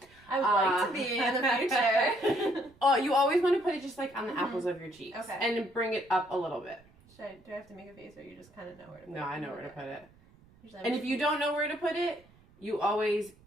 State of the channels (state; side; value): noise; right; rumble, 28 dB below the sound